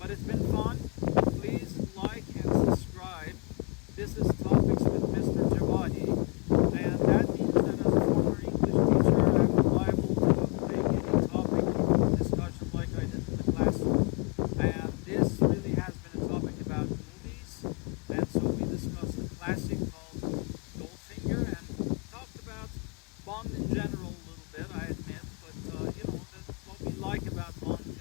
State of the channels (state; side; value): quieter; right; 33.7 dB